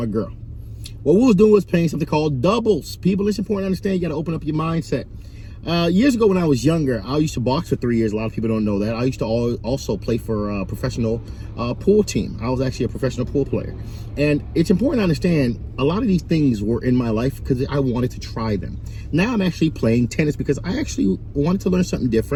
girl. What we was doing was playing something called doubles. People, it's important to understand you got to open up your mindset. Years ago when I was younger, I used to box for 3 years. A lot of people don't know that. I used to also play for a professional pool team. I was actually a professional pool player. And it's important to understand a lot of these things were in my life because I wanted to try them. Now I'm actually playing tennis because I actually wanted to learn something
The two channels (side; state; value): both; identical; correlation 1.00